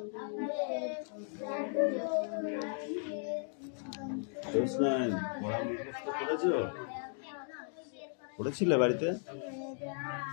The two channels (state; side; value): silent; right; 54 dB below the other